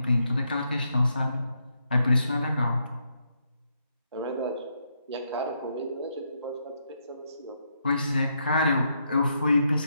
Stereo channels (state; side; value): inverted; both; correlation -0.79